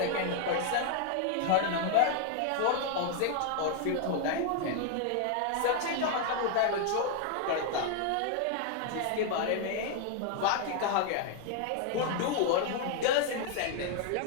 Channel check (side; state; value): both; different; correlation 0.00